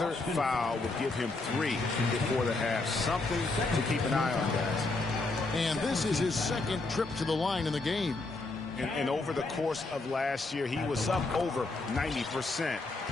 foul would give him 3 before the half. Something to keep an eye on, guys. And this is his second trip to the line in the game. And over the course of last year, he was up over 90%.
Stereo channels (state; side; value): quieter; right; 3.3 dB